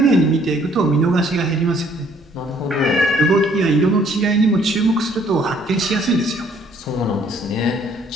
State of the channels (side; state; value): both; normal; correlation 0.62